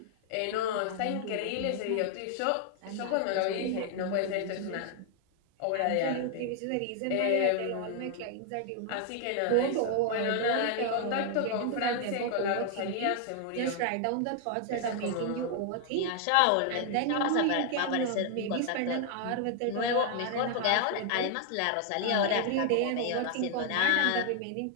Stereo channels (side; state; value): both; different; correlation 0.00